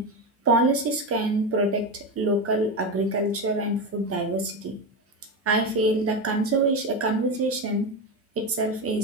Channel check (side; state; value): both; normal; correlation 0.16